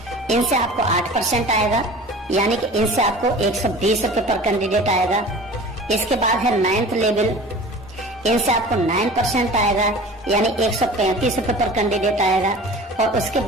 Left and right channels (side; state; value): both; normal; correlation 0.40